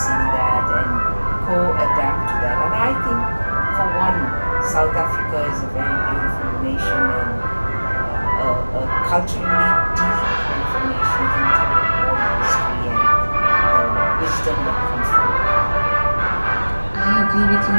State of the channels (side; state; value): both; inverted; correlation -1.00